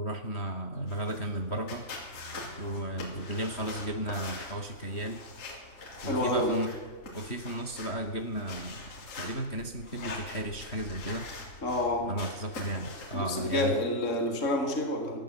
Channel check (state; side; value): late; right; 3.1 ms